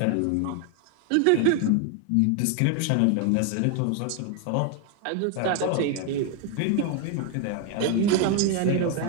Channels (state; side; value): different; both; correlation 0.00